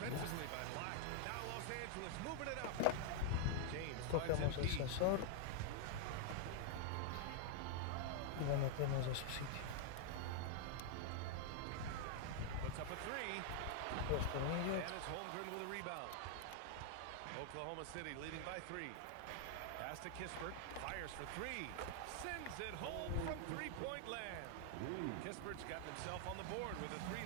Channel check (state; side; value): different; both; correlation 0.00